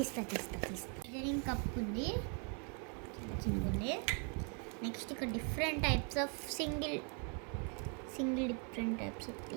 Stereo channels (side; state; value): left; quieter; 38.3 dB